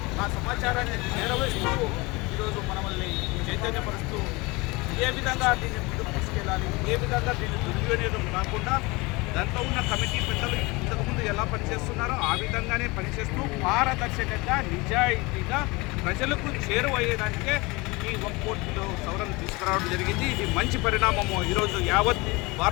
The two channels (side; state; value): right; quieter; 24.6 dB